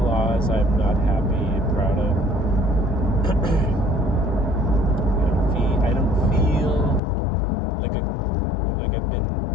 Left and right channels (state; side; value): drops out; right; at 7.0 s